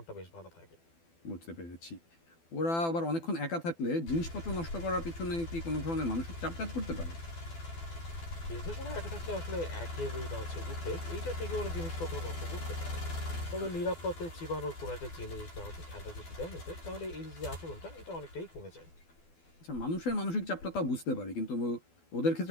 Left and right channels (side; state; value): right; late; 12 ms